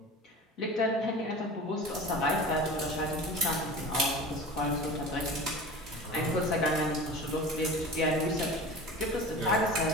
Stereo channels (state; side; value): normal; both; correlation 0.36